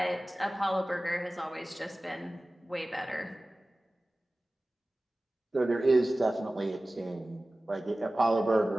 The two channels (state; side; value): normal; both; correlation 0.97